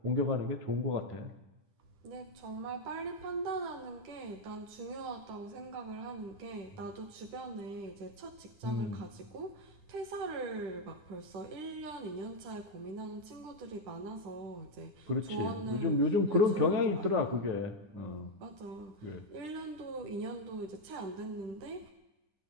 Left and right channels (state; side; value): late; left; 10 ms